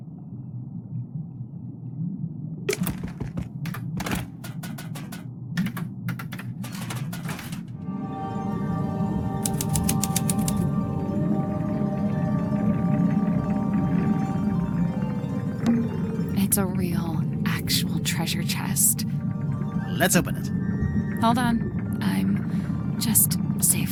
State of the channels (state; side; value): identical; both; correlation 1.00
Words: It's a real, actual treasure chest. Let's open it. Hold on. I'm just